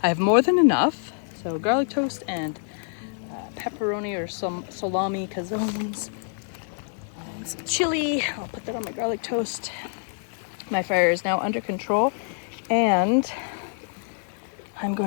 I have more than enough. So garlic toast and pepperoni or some salami calzones and some chili. I'll put that on my garlic toast. My fire is now under control. And I'm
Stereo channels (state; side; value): silent; right; digital silence